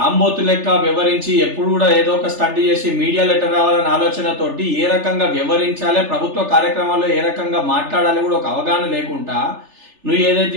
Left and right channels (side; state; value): left; late; 3.4 ms